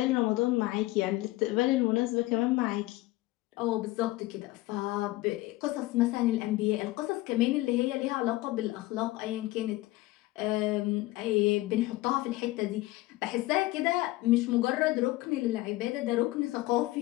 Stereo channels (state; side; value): quieter; right; 18.7 dB